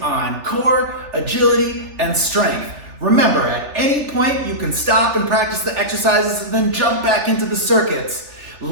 on core, agility, and strength. Remember, at any point you can stop and practice the exercises and then jump back into the circuits.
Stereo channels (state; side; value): late; left; 3.4 ms